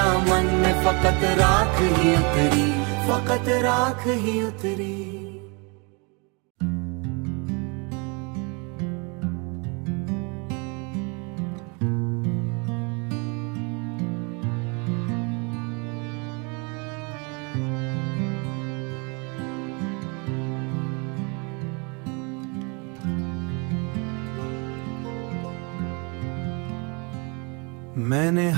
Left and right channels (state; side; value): quieter; left; 31.9 dB